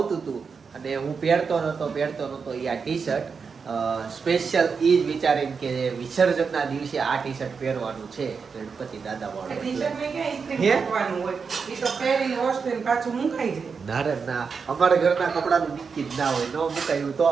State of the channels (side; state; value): left; quieter; 5.5 dB